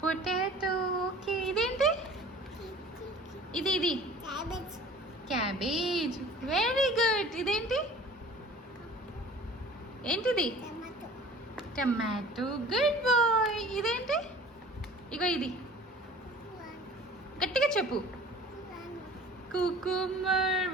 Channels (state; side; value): normal; both; correlation 0.45